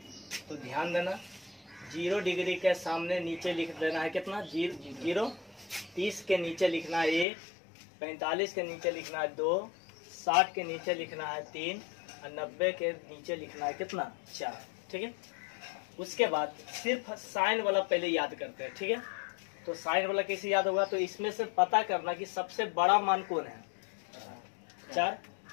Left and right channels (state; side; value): drops out; right; at 7.2 s